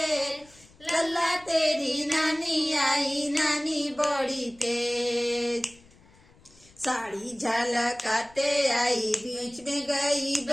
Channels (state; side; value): noise; left; rumble, 27 dB below the sound